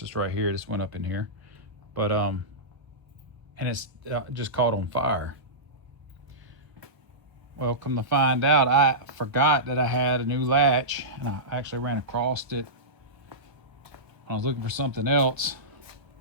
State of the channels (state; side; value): late; left; 1.1 ms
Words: right here, this went up in here, but and it's just caught on fire. Well, come to find out, I forgot that I had a new latch, and I actually ran across it. I was looking for something else.